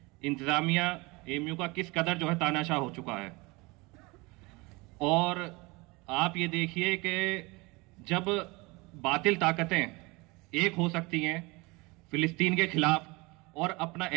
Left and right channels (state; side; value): quieter; left; 24.9 dB